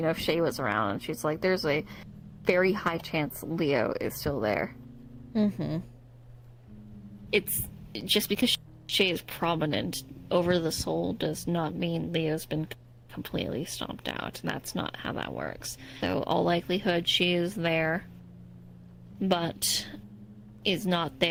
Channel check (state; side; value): identical; both; correlation 1.00